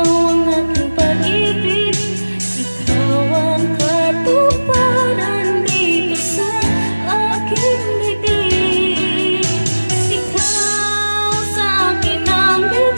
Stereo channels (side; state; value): both; inverted; correlation -1.00